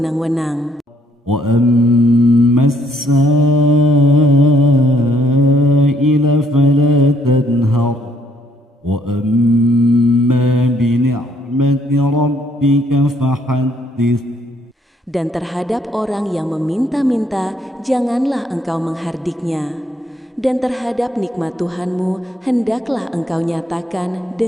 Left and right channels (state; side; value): normal; both; correlation 0.68